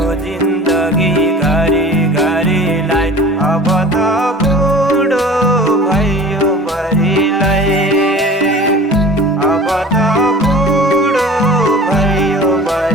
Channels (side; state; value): both; normal; correlation 0.42